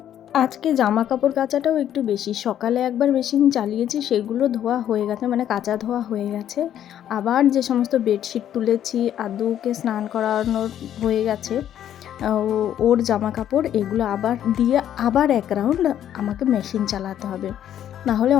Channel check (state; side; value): quieter; right; 10.6 dB